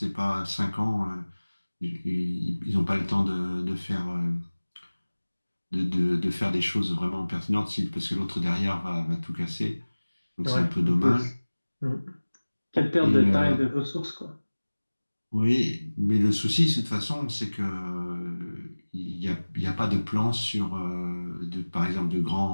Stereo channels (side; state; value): both; inverted; correlation -1.00